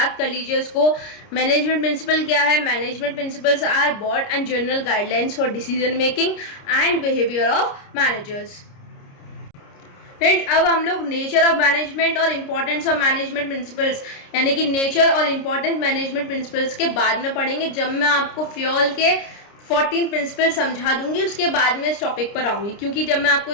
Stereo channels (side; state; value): right; late; 29 ms